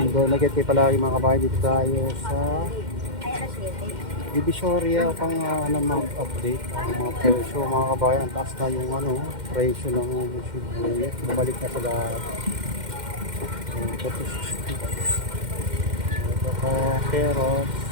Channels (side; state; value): left; late; 2.1 ms